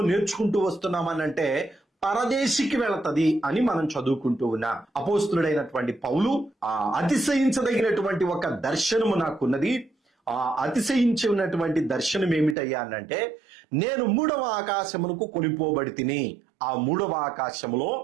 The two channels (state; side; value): drops out; left; at 12.6 s